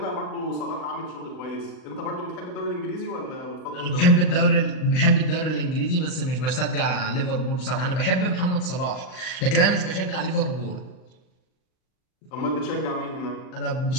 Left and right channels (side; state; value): right; late; 39 ms